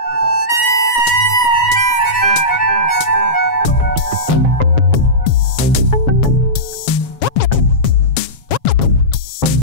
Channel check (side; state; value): right; late; 7.2 ms